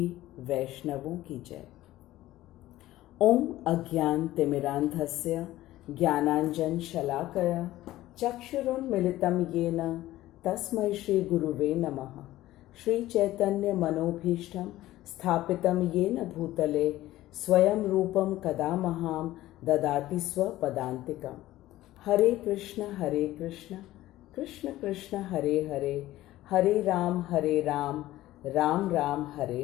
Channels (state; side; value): quieter; right; 15.6 dB